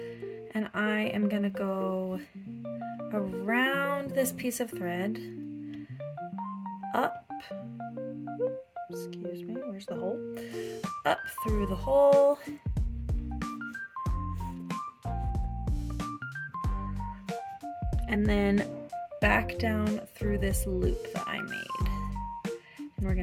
and I am going to go around this piece of thread, up, excuse me, where's the hole? Up through the hole, and then back down through this loop that I made. And we're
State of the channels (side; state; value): both; identical; correlation 1.00